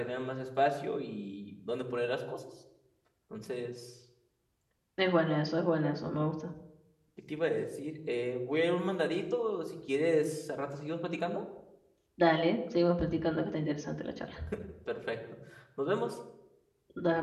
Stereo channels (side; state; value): both; identical; correlation 1.00